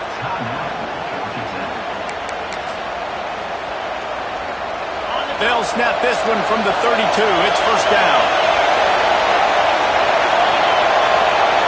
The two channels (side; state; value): both; identical; correlation 1.00